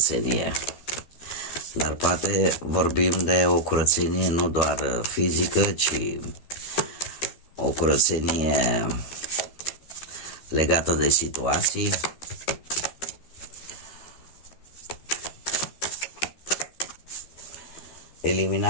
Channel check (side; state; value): right; late; 13 ms